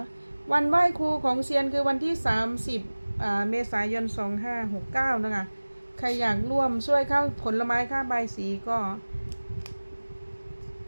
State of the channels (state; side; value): inverted; both; correlation -1.00